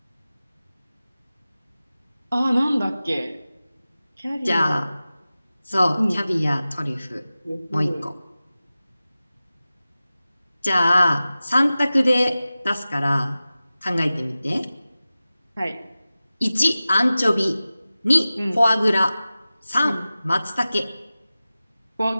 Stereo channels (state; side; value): inverted; both; correlation -0.96